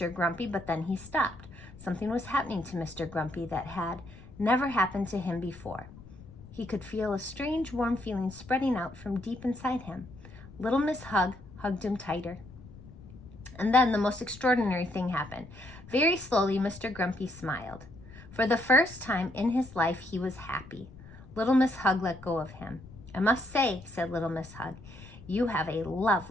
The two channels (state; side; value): noise; left; rumble, 19 dB below the sound